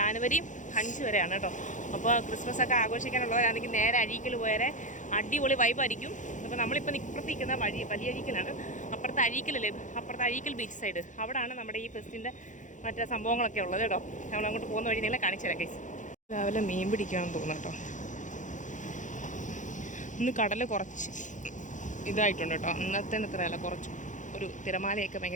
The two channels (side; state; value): right; late; 0.36 ms